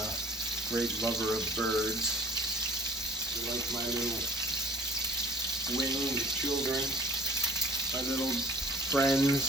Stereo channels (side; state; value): both; normal; correlation 0.50